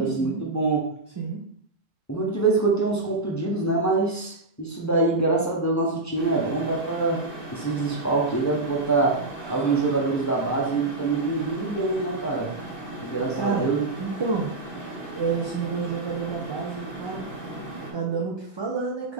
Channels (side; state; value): left; quieter; 3.1 dB